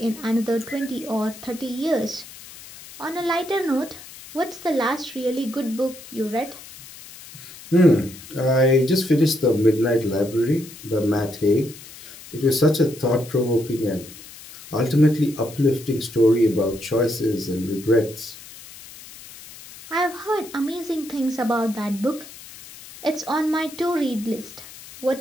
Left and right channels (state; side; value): noise; left; hiss, 17 dB below the sound